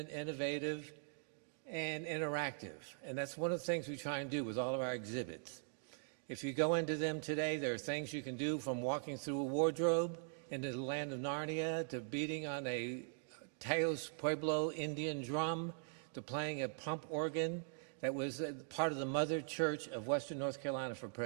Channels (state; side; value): silent; left; digital silence